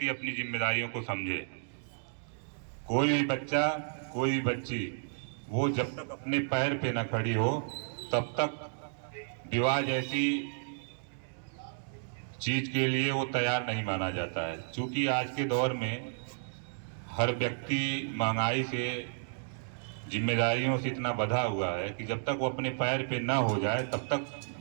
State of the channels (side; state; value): left; silent; digital silence